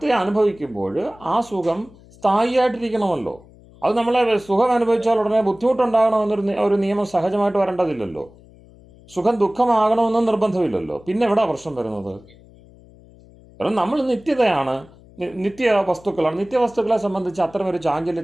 അനുഭവിക്കുമ്പോൾ ആ സുഖം സ്ഥായിയായിട്ടിരിക്കണമല്ലോ. അത് നമ്മളെ സുഖം അനുഭവിച്ചാൽ ഉടനെ ബുദ്ധിമുട്ടുണ്ടാകണമെന്നൊരു നിയമം സഹജമായിട്ട് വരേണ്ടതില്ലല്ലോ. സുഖം ദുഃഖമാകണമെന്നും നിർബന്ധമില്ലല്ലോ. പിന്നെ എവിടെ പ്രശ്നം വരുന്നത്? കാരണം നമ്മൾ നിത്യതയാണ്, നിത്യ വസ്തുക്കളെ സംബന്ധിച്ച് അത്തരമൊരു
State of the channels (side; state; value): left; noise; hum, 24 dB below the sound